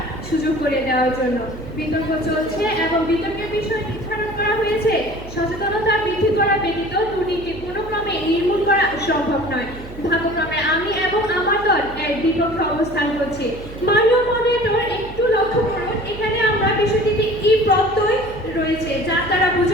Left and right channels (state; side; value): noise; right; hum, 14 dB below the sound